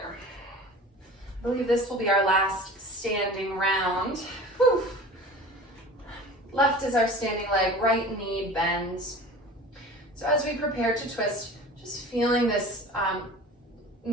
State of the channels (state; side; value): normal; both; correlation 0.39